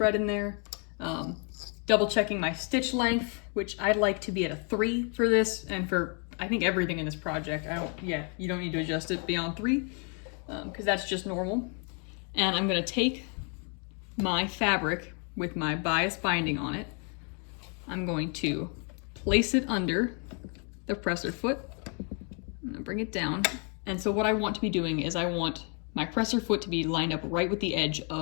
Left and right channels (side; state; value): right; quieter; 38.1 dB